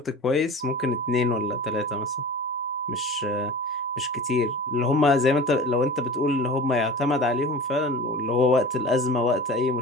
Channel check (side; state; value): both; normal; correlation 0.36